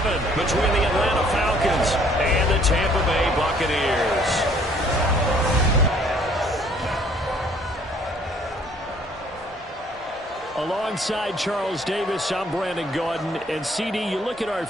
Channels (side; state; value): both; normal; correlation 0.60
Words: between the Atlanta Falcons and the Tampa Bay Buccaneers. Alongside Charles Davis, I'm Brandon Gaudin. And CD, you look at our